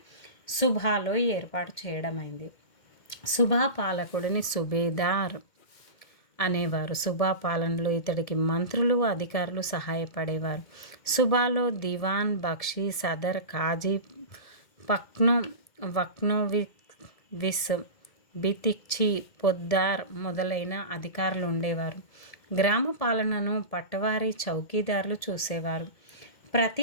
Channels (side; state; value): right; late; 2.1 ms